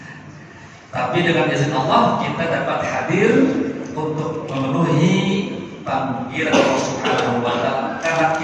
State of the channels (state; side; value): identical; both; correlation 1.00